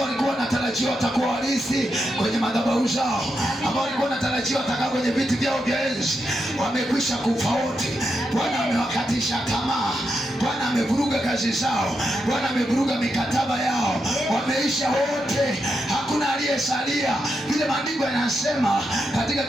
walikuwa wanatarajiwa watakuwa warithi kwenye madhabahu zao, ambao walikuwa wanatarajiwa watakaa kwenye viti vyao vya enzi, wamekwisha kufa wote. Bwana amewakatisha tamaa. Bwana amevuruga kazi zao. Bwana amevuruga mikataba yao. Wameisha wote, hakuna aliyesalia. Vile maandiko yanasema katika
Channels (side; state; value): both; normal; correlation 0.85